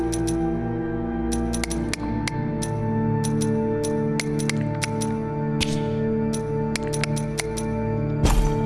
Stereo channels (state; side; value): identical; both; correlation 1.00